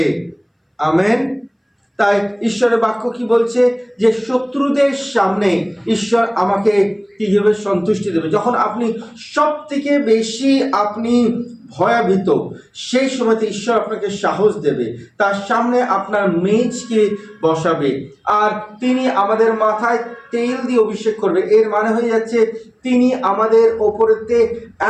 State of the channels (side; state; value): both; identical; correlation 1.00